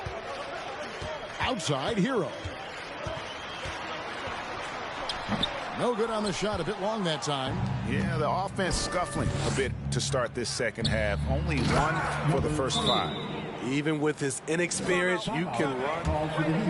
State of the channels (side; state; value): both; identical; correlation 1.00